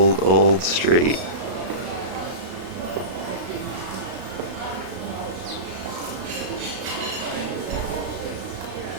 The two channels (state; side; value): late; left; 33 ms